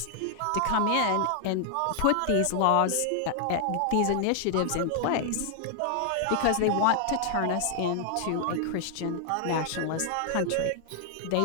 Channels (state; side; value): different; both; correlation 0.00